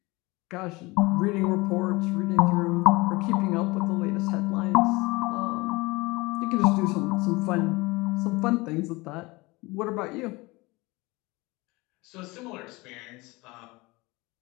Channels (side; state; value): right; quieter; 23.3 dB